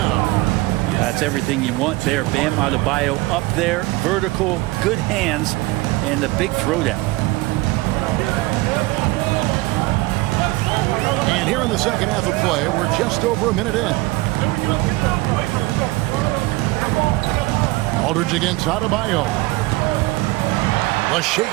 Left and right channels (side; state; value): left; quieter; 20.8 dB